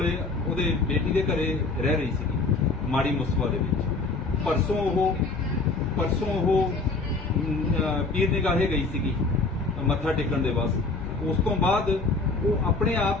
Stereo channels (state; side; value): quieter; right; 3.7 dB